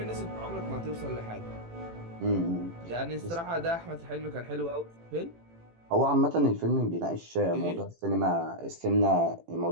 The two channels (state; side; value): late; left; 18 ms